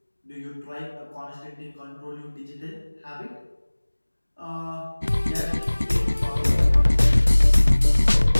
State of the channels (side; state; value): both; inverted; correlation -1.00